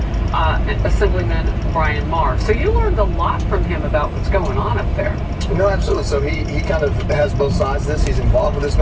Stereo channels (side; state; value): both; identical; correlation 1.00